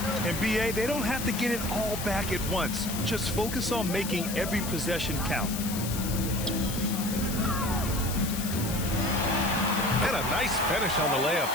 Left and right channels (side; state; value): left; noise; hiss, 7 dB below the sound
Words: And BA, they don't have to get it all back at once. Just focus on making every possession count. And a nice finish on the layup.